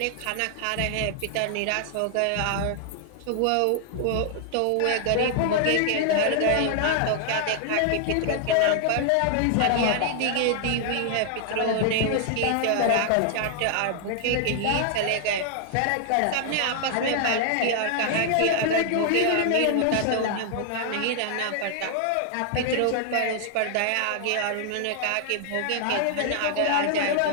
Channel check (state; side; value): different; both; correlation 0.00